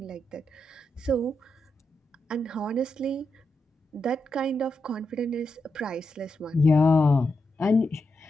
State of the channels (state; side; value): normal; both; correlation 0.85